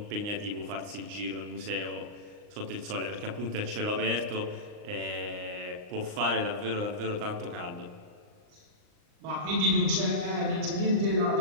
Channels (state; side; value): late; left; 39 ms